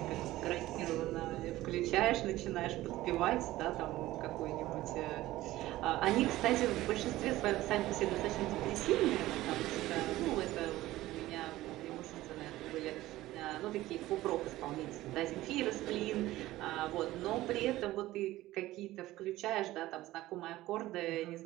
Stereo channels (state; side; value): quieter; left; 16.5 dB